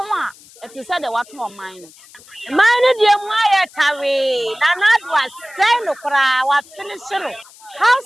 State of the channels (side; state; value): left; noise; hiss, 23 dB below the sound